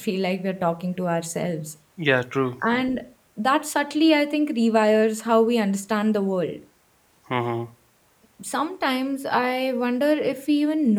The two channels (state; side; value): identical; both; correlation 1.00